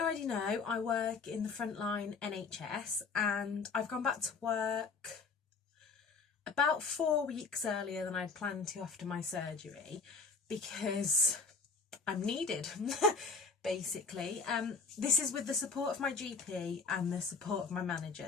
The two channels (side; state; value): right; quieter; 4.6 dB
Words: know, I work in the frontline NHS and I've gone back to work about 4 weeks earlier than I'd planned to after my surgery because I'm needed, basically. This is with the support of my GP and the support of my